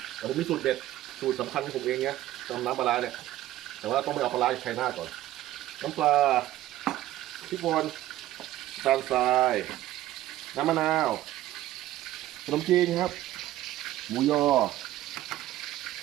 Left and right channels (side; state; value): left; quieter; 14.7 dB